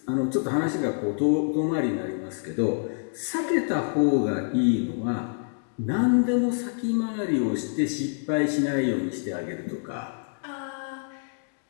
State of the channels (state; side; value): silent; right; digital silence